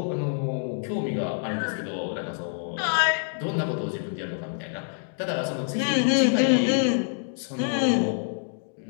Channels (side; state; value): right; silent; digital silence